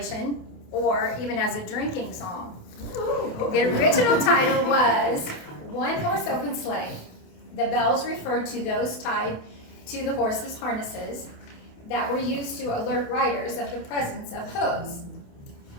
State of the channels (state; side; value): late; right; 28 ms